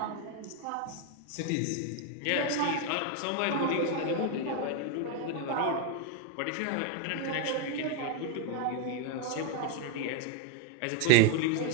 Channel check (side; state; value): both; different; correlation 0.01